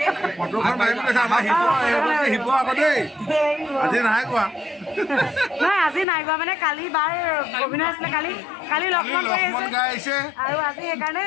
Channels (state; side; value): drops out; right; at 6.1 s